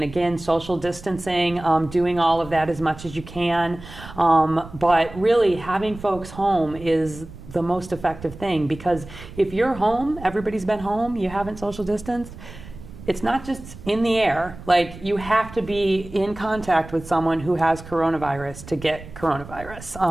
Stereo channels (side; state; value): right; noise; rumble, 16 dB below the sound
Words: again, social distancing, doing all of that as much as you can. But really having folks home is the most effective thing, because if you're home, everybody's been home, you haven't social distanced, it's not just in the air. Like, you have to be in contact with someone who has coronavirus to get